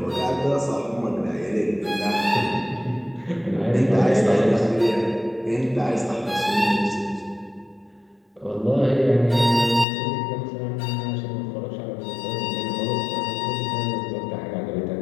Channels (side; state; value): right; drops out; at 9.9 s